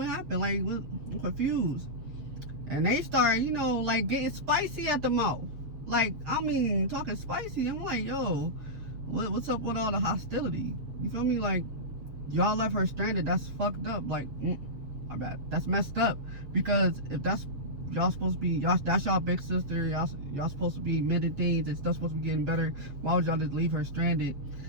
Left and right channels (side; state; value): left; late; 7.4 ms